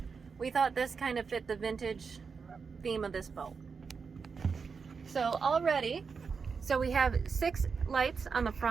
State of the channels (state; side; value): quieter; left; 5.4 dB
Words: We thought this kind of fit the vintage theme of this boat. So already, so we have 6 lights on the